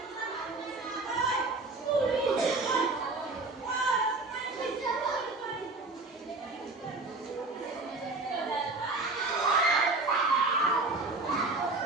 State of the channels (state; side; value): quieter; left; 3.4 dB